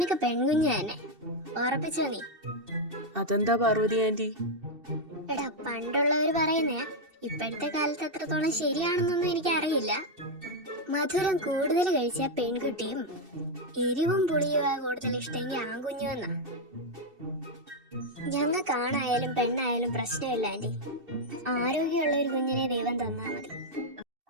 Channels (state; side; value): late; left; 2.7 ms